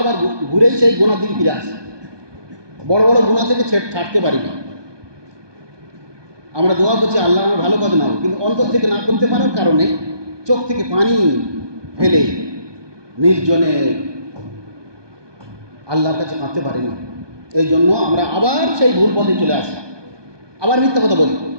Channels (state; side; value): late; left; 1.2 ms